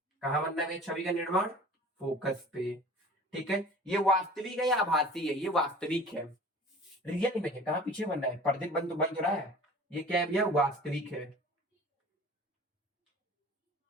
कहाँ बनना है छवि का निर्माण, फोकस पे, ठीक है। ये वास्तविक है या आभासी है, ये वास्तविक है, रियल इमेज है। कहाँ पीछे बनना है, पर्दे बन तो रहा है, ये क्या है भैया, वास्तविक है।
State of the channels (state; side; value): normal; both; correlation 0.43